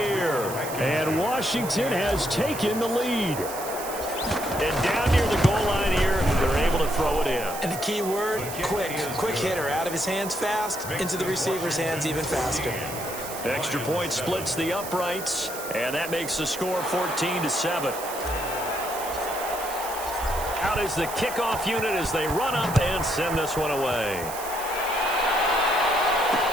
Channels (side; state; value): right; noise; hiss, 10 dB below the sound